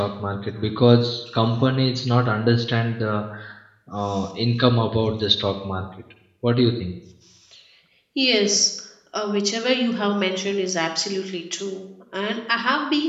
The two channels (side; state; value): both; identical; correlation 1.00